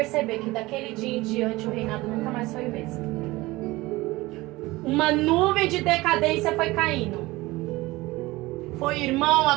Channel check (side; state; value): left; quieter; 20.1 dB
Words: que daquele dia em diante o reinado nunca mais foi o mesmo. Uma nuvem de decadência foi caindo. Foi irmão